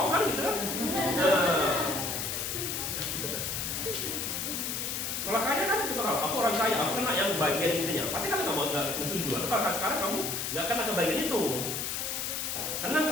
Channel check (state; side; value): noise; left; hiss, 2 dB below the sound